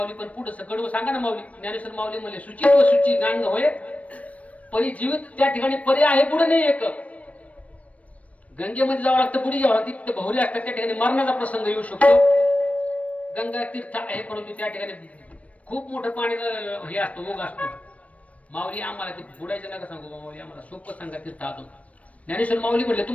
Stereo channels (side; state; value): right; late; 0.066 ms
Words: पण पुढे कडवं सांगा ना माऊली. ज्ञानेश्वर माऊली म्हणले शुचित्व शुचिगांग होय परी जीवित त्या ठिकाणी पर्याय आहे पुढे नाही एक. गंगेमध्ये जावं लागतं, पुढे जावं लागतं. तिथे बहुरे असतात, त्या ठिकाणी मरणाचा प्रसंग येऊ शकतो. गंगा तीर्थ आहे परंतु त्या ठिकाणी खूप मोठं पाण्याचं हे असतो, ओघ असतो. माऊली आम्हाला ते बुडायचं नका सांगू माऊली, आम्हाला सोपं सांगा तीर्थ आतून. ज्ञानेश्वर माऊली म्हटले